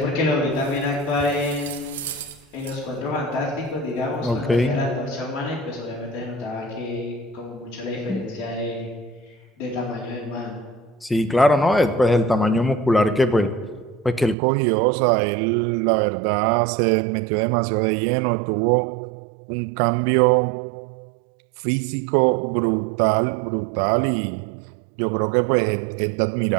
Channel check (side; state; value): left; drops out; at 14.4 s